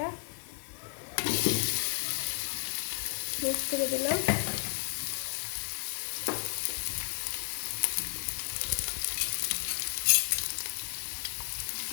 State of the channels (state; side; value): silent; right; 56 dB below the other